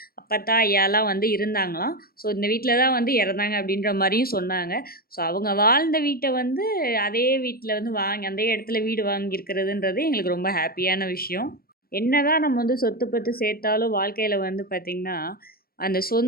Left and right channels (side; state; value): right; late; 0.44 ms